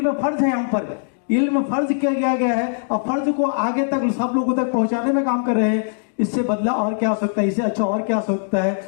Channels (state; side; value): silent; right; digital silence